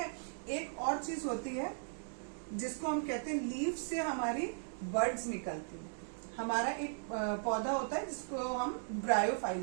एक और चीज होती है जिसको हम कहते हैं लीफ से हमारी बर्ड्स निकलती हैं। हमारा एक पौधा होता है जिसको हम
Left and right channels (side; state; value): left; silent; digital silence